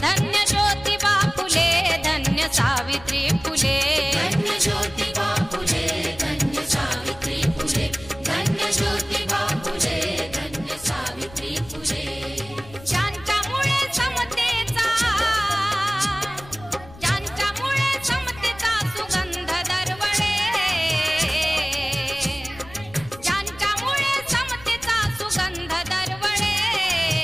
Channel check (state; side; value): noise; left; rumble, 19 dB below the sound